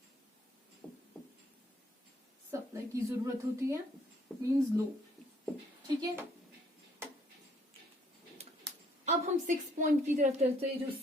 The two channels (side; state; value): both; normal; correlation 0.65